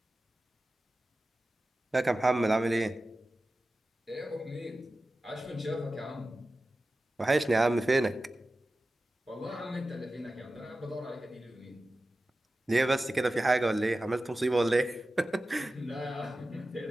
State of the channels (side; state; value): both; normal; correlation 0.95